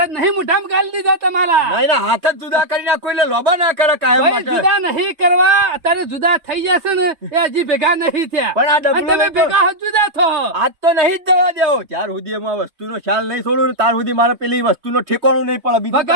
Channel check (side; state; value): left; late; 3.2 ms